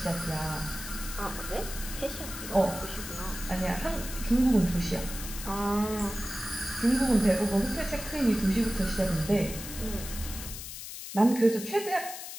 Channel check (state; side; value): noise; left; hiss, 9 dB below the sound